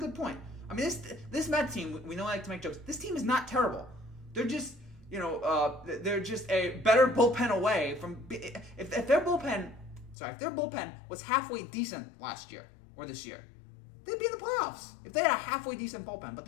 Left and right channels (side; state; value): right; drops out; at 10.2 s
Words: point. I mean, this Met team, we know I like to make jokes. This team is not terrible. They're just they're just a better bullpen away from. If their bullpen was halfway decent last year or this year, they'd be in the playoffs. If they had a halfway decent bullpen, but